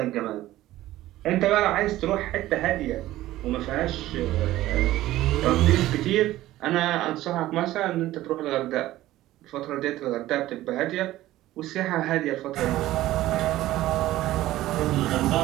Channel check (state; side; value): quieter; left; 15.4 dB